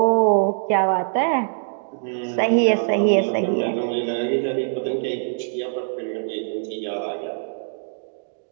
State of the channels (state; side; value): silent; left; digital silence